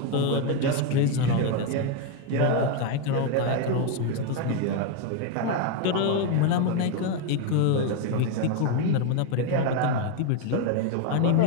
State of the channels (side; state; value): both; different; correlation 0.02